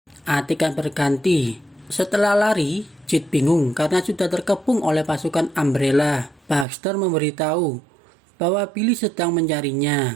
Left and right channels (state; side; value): drops out; left; at 6.7 s